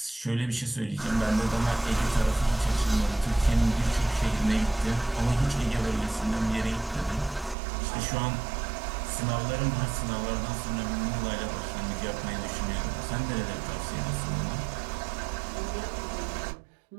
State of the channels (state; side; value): drops out; left; at 7.6 s